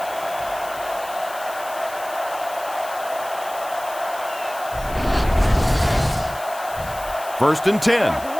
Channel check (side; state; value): left; noise; hiss, 15 dB below the sound